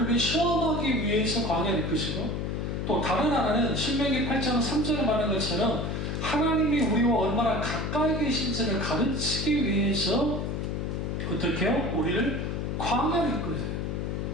시험하기 위해서 광야로 이끄시고, 또 다른 하나는 신명기 8장 3절에 말한 것처럼 하나님이 우리와 얼마나 가까이 계신지를 가르치기 위해서 어떻게 해요? 우리를 광야로 이끌어요.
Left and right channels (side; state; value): left; noise; hum, 2 dB below the sound